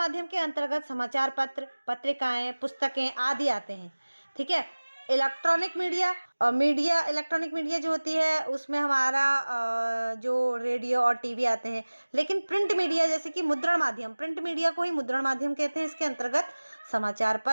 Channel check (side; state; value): both; inverted; correlation -1.00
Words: के अंतर्गत समाचार पत्र, पत्रिकाएं, पुस्तकें आदि आते हैं। ठीक है। इलेक्ट्रॉनिक मीडिया जो होती है उसमें हमारा जो रेडियो और टीवी आते हैं। लेकिन प्रिंट मीडिया जैसे कि मुद्रण माध्यम, प्रिंट मीडिया को ही मुद्रण माध्यम कहते हैं। इसके अंतर्गत समाचार